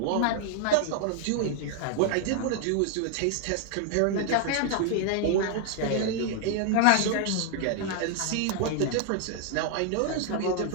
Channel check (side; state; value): both; different; correlation 0.00